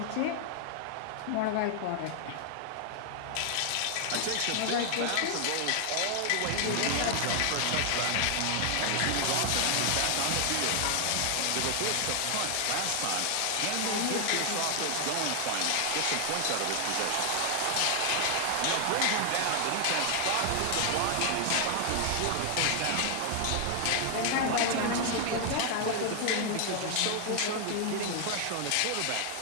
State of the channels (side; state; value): both; different; correlation 0.00